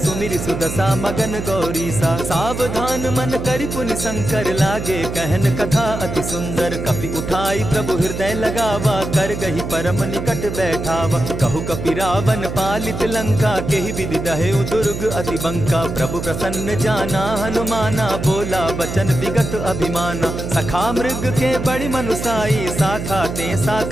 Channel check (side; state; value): right; noise; hum, 6 dB below the sound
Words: सुदशा मगन गौरीसा। सावधान मन करि पुनि शंकर, लागे कहन कथा अति सुंदर। कपि उठाई प्रभु हृदय लगावा, कर गही परम निकट बैठावा। कहु कपि रावण पालित लंका, केहि विधि दहेउ दुर्ग अति बंका। प्रभु प्रसन्न जाना हनुमाना, बोला बचन विगत अभिमाना। सखा मृग के बड़ी मनुसाई, साखा ते